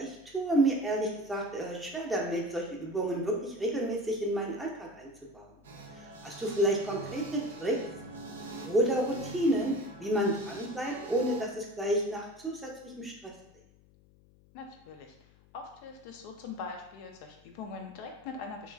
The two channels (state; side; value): noise; left; hum, 27 dB below the sound